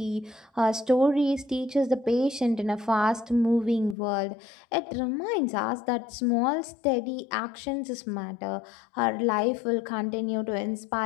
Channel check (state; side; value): drops out; right; at 4.0 s